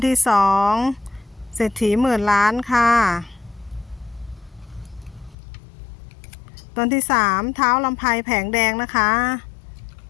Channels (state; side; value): drops out; right; at 5.4 s